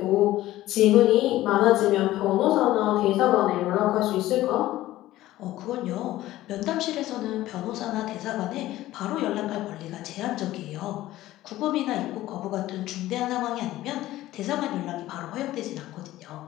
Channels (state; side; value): quieter; right; 15.5 dB